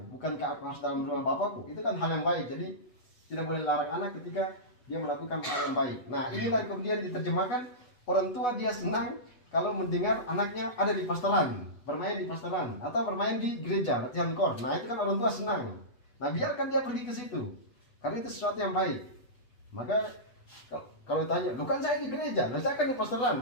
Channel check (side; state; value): right; late; 8.1 ms